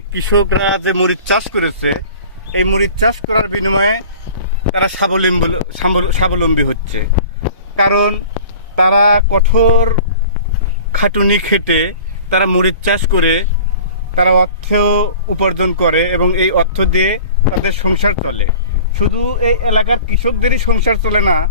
কৃষকরা যে মরিচ চাষ করেছে, এই মরিচ চাষ করার বিনিময়ে তারা স্বাবলম্বী হচ্ছে। কারণ তারা কঠোর খাটুনি খেটে তারা মরিচ চাষ করে তারা অর্থ উপার্জন করে এবং এই অর্থ দিয়ে তাদের সংসার চলে। শুধু এই এলাকার কৃষকদেরই সংসার চলে না,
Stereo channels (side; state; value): both; inverted; correlation -0.43